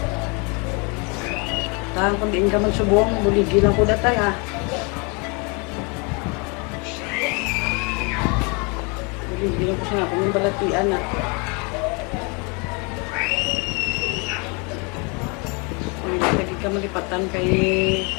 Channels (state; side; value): quieter; right; 31.7 dB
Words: Tahan kung diin ka magsubong, buligi lang ko datay ha. Buligi lang ko sa akong yung balatian ha. Lagi ka malipatan kay